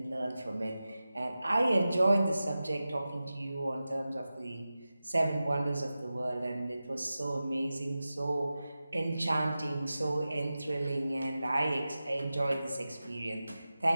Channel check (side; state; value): both; inverted; correlation -0.94